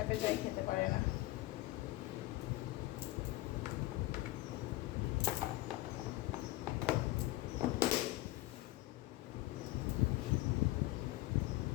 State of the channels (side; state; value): right; quieter; 17.8 dB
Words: যাই খেতে পারে না।